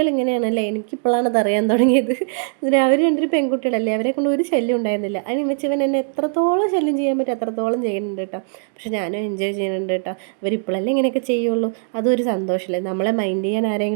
ഇങ്ങനെയാണല്ലേ, എനിക്കിപ്പോഴാണ് അത് അറിയാൻ തുടങ്ങിയത്. അവർ രണ്ടൊരു പെൺകുട്ടികളല്ലേ, അവരെ കൊണ്ട് ഒരു ശല്യം ഉണ്ടായിരുന്നില്ല. അതിന് വെച്ചവൻ എന്നെ എത്രത്തോളം ശല്യം ചെയ്യാൻ പറ്റും അത്രത്തോളം ചെയ്യുന്നുണ്ട് കേട്ടോ. പക്ഷെ ഞാനും എൻജോയ് ചെയ്യുന്നുണ്ട് കേട്ടോ. ഇവരിപ്പോഴല്ലേ ഇങ്ങനെയൊക്കെ ചെയ്യുള്ളൂ, അതൊരു സന്തോഷമല്ലേ. നമ്മളെ മൈൻഡ് ചെയ്യാൻ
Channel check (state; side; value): silent; left; digital silence